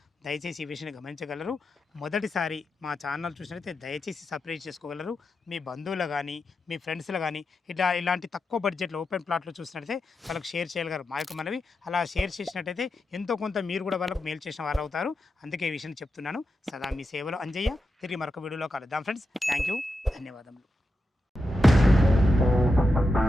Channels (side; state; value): both; normal; correlation 0.88